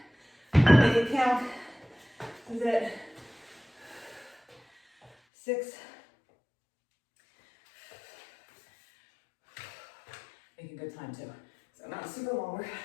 Make it count. This is it. 6. Making good time too. So not super long work.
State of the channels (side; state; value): right; drops out; at 5.1 s